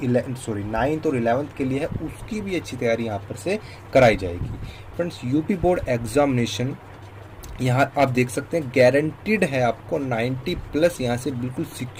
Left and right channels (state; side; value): identical; both; correlation 1.00